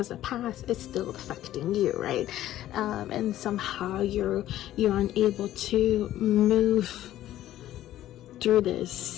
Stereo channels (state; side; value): quieter; right; 13.4 dB